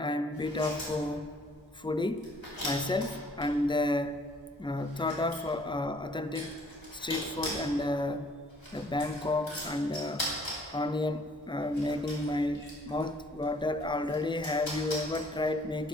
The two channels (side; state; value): both; normal; correlation 0.60